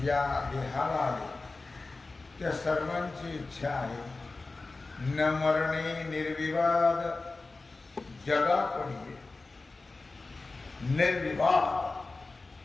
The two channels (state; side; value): quieter; right; 3.5 dB